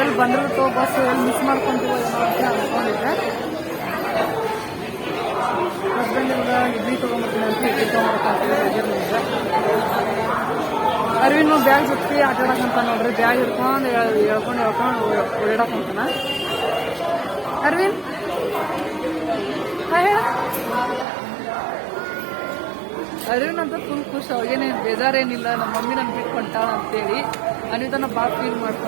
ಬಂದಿರುತ್ತೋ ಬಸ್ ಎಲ್ಲಿ ಮಿಸ್ ಮಾಡ್ಕೊಂತೀವೋ ಏನೋ ಅಂತ ಅನ್ಕೊಂಡಿದ್ದೆ. ಹಸ್ಬೆಂಡ್ ಎಲ್ಲ ಇಡ್ಲಿ ತೊಗೊಂಡ್ಬರ್ತೀನಿ ಅಂತ ಇಡ್ಲಿ ತೊಗೊಂಡ್ಬರ್ತೀನಿ. ಅರ್ವಿನು ಬ್ಯಾಗ್ ಜೊತೆ ಆಟಾಡಕಂತ ನೋಡ್ರಿ. ಬ್ಯಾಗ್ ಹಿಡ್ಕೊಂಡು ಹೇಳ್ಕೊಂಡು ಓಡಾಡಕಂತಾನ. ಅರ್ವಿನ್ ಹೇಳ. ಅರ್ವಿನ್ ಅಂತ ಫುಲ್ ಖುಷಿ. ಅವಾಗೇನೇ ಬೇಜಾರೇನಿಲ್ಲ. ನಮ್ಮ ಮಮ್ಮಿ ನನ್ ಬಿಟ್ಕೊಂತಾಳ ಅಂತೇಳಿ ಅನಿತನ ಭಾಳ ಫೀಲ್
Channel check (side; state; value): left; drops out; at 21.1 s